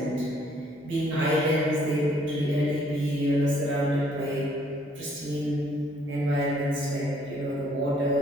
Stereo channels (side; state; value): both; normal; correlation 0.64